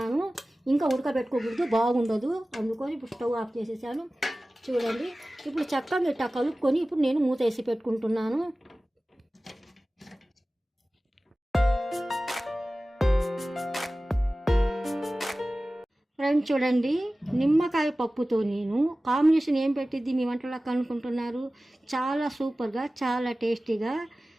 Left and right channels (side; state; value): both; normal; correlation 0.97